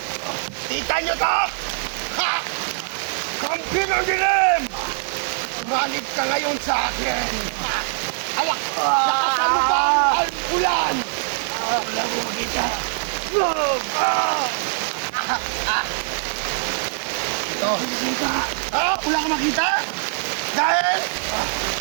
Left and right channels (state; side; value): silent; left; 64 dB below the other